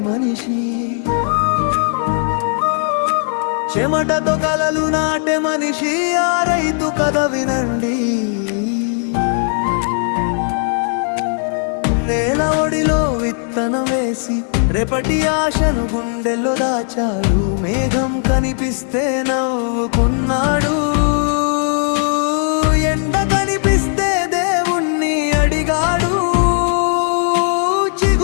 మనిషి, చెమటతో కలలు నాటే మనిషి, ఆ రైతు కథ వినండి. నేల ఒడిలో విత్తనం వేసి రేపటి ఆశను గుండెల్లో దాచాడు. మేఘం కనిపిస్తే నవ్వుకున్నాడు, ఎండ కనిపిస్తే దేవుణ్ణి అడిగాడు.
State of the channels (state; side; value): silent; right; 56 dB below the other